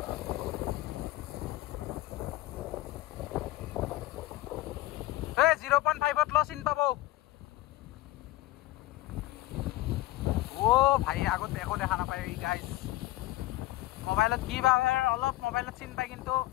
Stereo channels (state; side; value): quieter; right; 17.0 dB